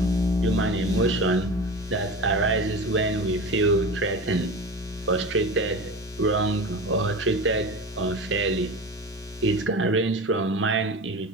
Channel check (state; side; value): normal; both; correlation 0.30